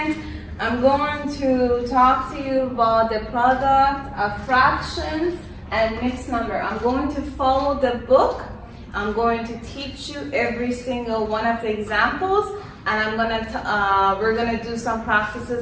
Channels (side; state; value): both; identical; correlation 1.00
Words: I'm going to talk to you about the product of fractions and mixed number. I'm going to follow the book. I'm going to teach you every single one of the examples, and we're gonna do some